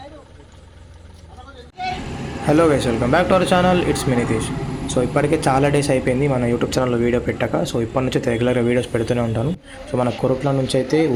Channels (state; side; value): identical; both; correlation 1.00